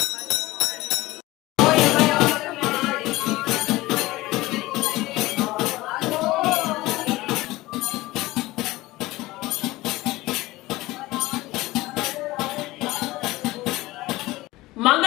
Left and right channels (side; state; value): right; quieter; 19.0 dB